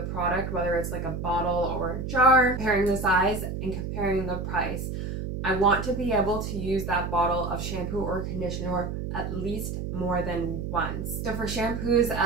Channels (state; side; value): noise; right; hum, 5 dB below the sound